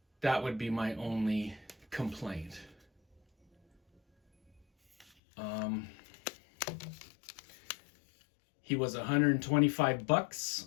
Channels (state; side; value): drops out; right; at 5.1 s